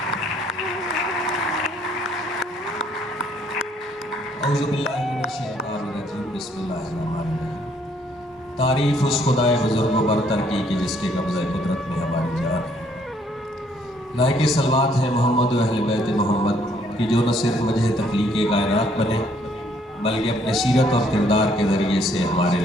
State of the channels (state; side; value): normal; both; correlation 0.66